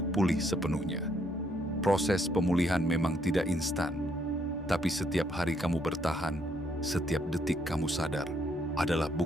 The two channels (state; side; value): normal; both; correlation 0.71